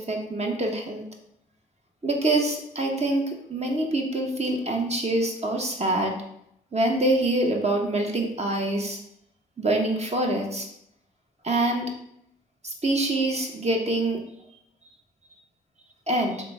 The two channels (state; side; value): normal; both; correlation 0.48